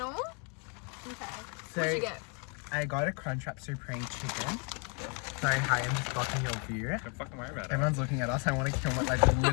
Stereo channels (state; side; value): quieter; right; 36.3 dB